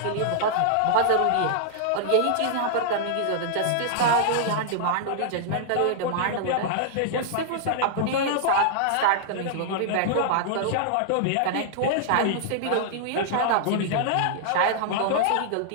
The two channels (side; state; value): both; different; correlation -0.01